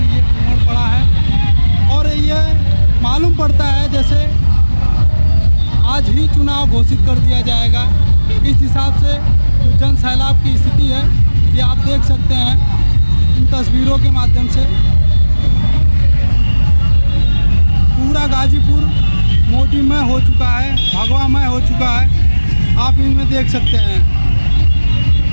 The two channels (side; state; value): both; inverted; correlation -1.00